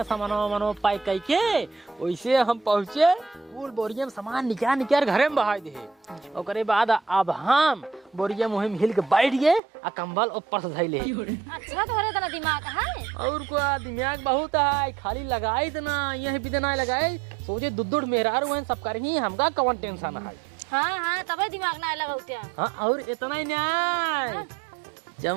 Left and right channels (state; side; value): drops out; left; at 9.6 s